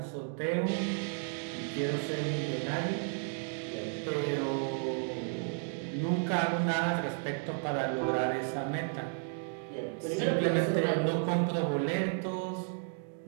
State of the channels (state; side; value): silent; left; 56 dB below the other